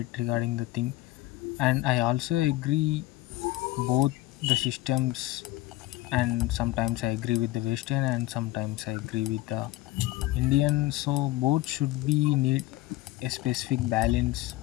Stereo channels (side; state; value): right; quieter; 17.4 dB